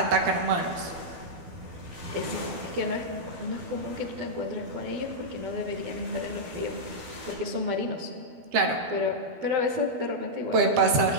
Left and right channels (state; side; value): late; left; 12 ms